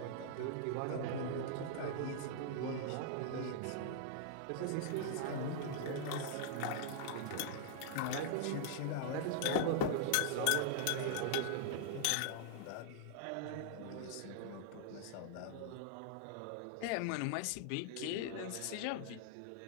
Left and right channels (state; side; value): different; both; correlation -0.01